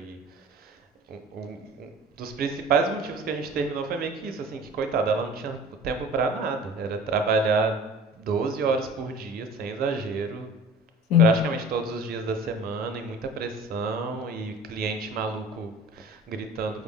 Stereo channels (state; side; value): normal; both; correlation 0.43